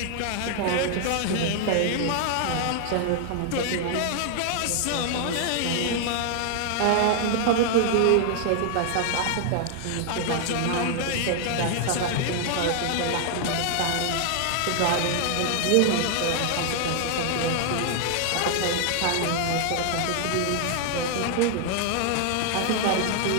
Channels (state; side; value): different; both; correlation 0.00